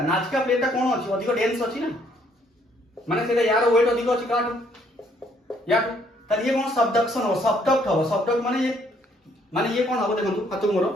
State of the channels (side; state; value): both; normal; correlation 0.66